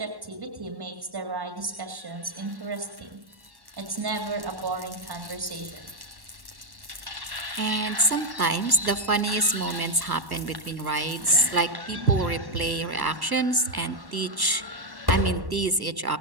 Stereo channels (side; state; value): left; late; 1.1 ms